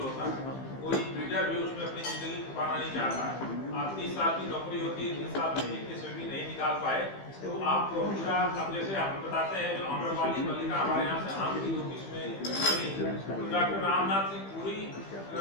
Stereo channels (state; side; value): late; right; 15 ms